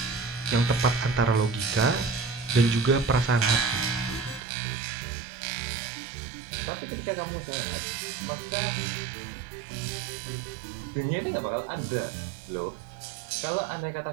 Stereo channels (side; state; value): left; drops out; at 4.4 s